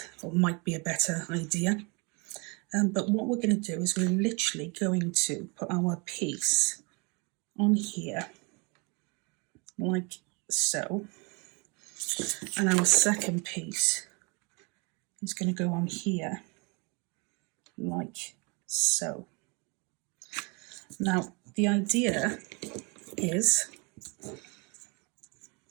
or might be a better idea. But what we're going to do is we're literally going to put our piece on here, like so. And our second piece is going to go on here, like so. Now, the idea is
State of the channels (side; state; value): left; quieter; 30.7 dB